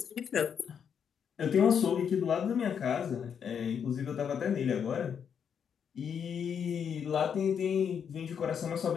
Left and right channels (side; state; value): right; quieter; 7.6 dB